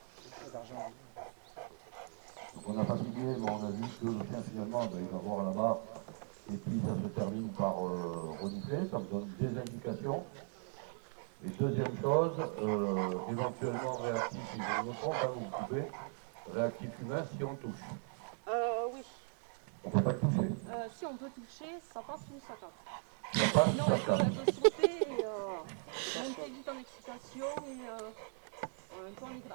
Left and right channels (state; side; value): silent; left; 52 dB below the other